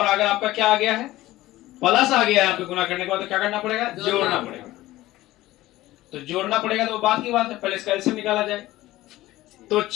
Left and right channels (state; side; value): quieter; right; 16.7 dB